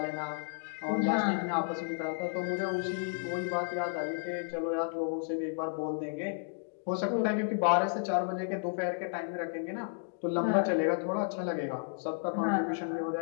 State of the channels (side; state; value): right; silent; digital silence